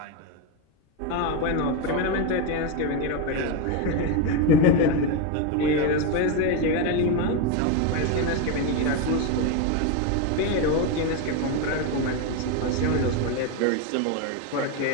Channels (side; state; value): both; different; correlation 0.03